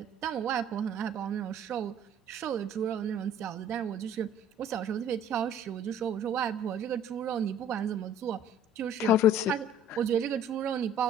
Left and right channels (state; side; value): normal; both; correlation 0.52